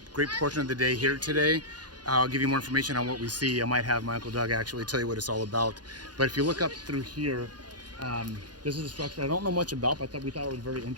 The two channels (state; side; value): late; left; 0.69 ms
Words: great portion of the day here today. I'll give you more information on what we see. I might have my Uncle Doug actually tell you what it's all about. But if you look up through here, this is a structure I don't know much about, but we thought it was very